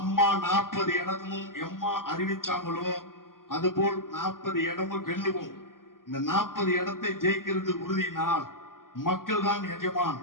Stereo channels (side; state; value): right; late; 0.91 ms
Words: 40 இடமும் எம்மா அறிவிச்சாங்களோ அது போல் 40 இடமும் வெல்லுவோம். இந்த 40 இடத்தை ஜெயிக்கிறது உறுதினால் மக்கள் தான் எஜமான்.